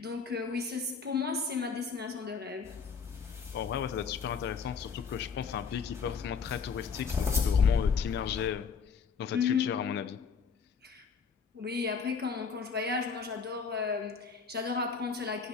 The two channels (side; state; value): right; quieter; 5.8 dB